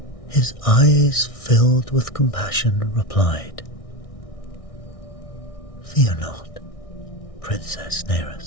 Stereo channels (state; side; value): late; right; 1.6 ms